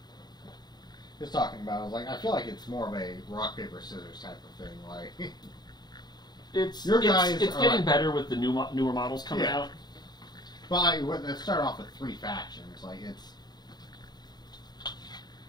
He was talking about. I was like, I feel like it's more of a rock paper scissors type of thing. Like it's your guys. It's getting better with the newer models coming out. Well, they start off with 3 factions. Like it's.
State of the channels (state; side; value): late; right; 0.20 ms